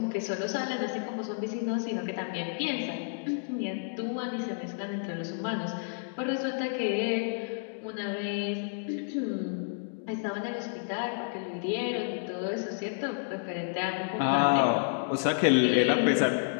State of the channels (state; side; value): silent; right; digital silence